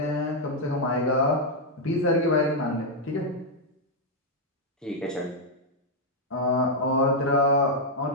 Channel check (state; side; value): normal; both; correlation -0.02